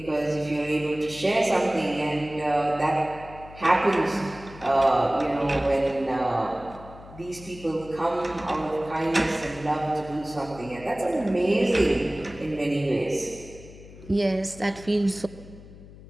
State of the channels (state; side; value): noise; left; hum, 18 dB below the sound